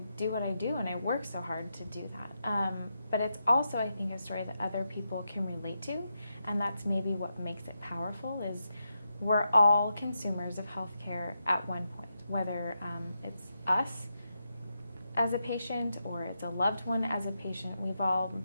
do what I do, and I work so hard to do that. But it's also, I think, a story that other people can relate to, and that's maybe what makes it powerful. Is we're all consumers of healthcare at one point, whether it's us as a patient or it's a loved one as a patient. We've all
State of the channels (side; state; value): both; inverted; correlation -0.86